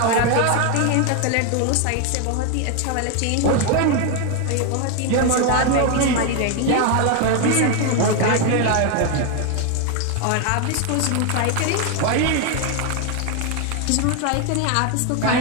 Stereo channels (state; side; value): different; both; correlation 0.01